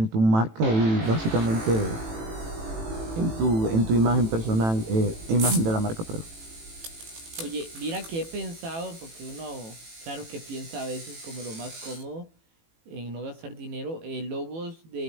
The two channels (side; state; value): left; late; 18 ms